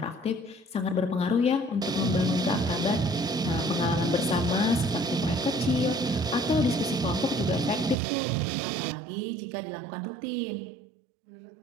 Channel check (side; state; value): left; drops out; at 8.0 s